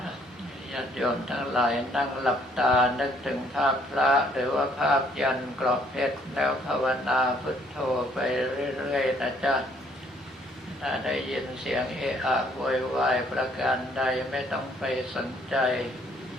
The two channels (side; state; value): both; normal; correlation 0.64